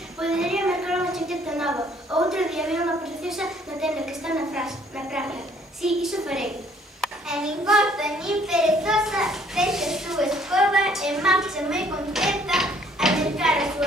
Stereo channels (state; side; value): normal; both; correlation 0.61